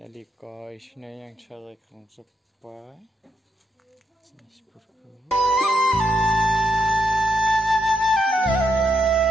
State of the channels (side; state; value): both; normal; correlation 0.80